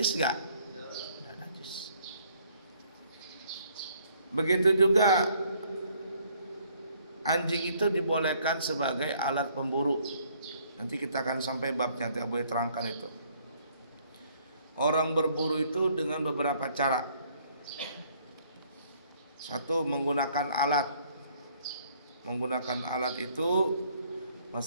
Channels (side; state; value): both; inverted; correlation -0.63